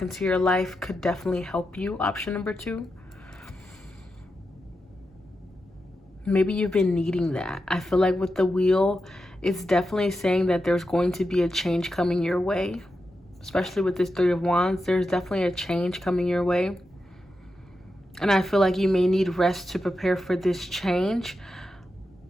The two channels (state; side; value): normal; both; correlation 0.88